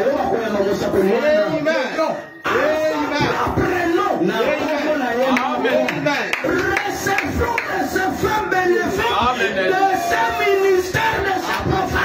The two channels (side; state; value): both; identical; correlation 1.00